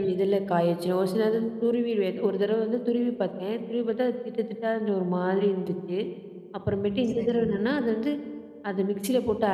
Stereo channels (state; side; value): identical; both; correlation 1.00